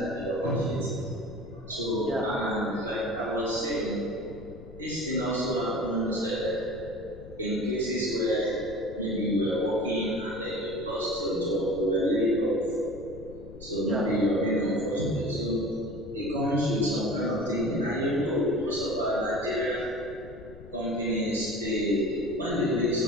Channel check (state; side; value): noise; left; rumble, 16 dB below the sound